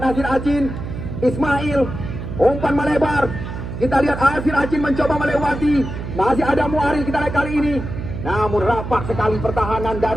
Nasir Acin, Ismail, umpan melebar. Kita lihat Nasir Acin mencoba melewati. Masih ada Muaril kita lihat kali ini. Namun rapat sekali pertahanan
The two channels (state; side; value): noise; right; hum, 7 dB below the sound